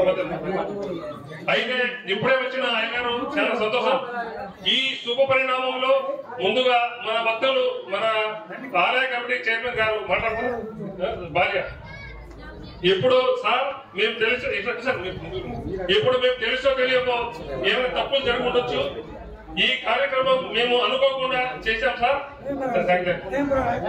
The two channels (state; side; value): identical; both; correlation 1.00